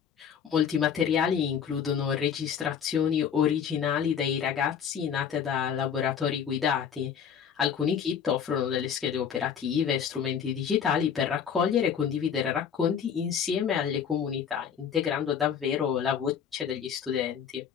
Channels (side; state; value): right; quieter; 7.8 dB